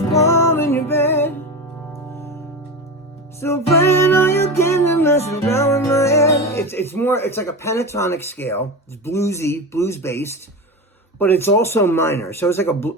warm in your bed. Still playing all your games and messing around with my head. It's more, it's like a pentatonic scale. It's bluesy, blues based, but it's also minor. So it's like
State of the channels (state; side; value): normal; both; correlation 0.23